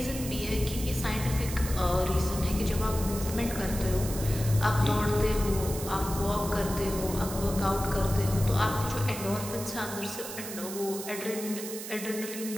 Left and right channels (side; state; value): right; noise; hiss, 9 dB below the sound